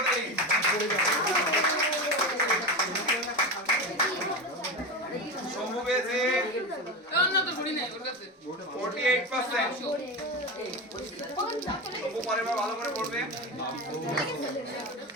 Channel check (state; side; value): normal; both; correlation 0.20